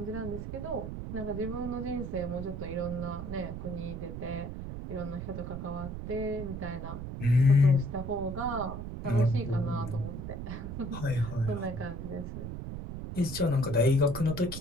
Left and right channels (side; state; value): right; noise; rumble, 7 dB below the sound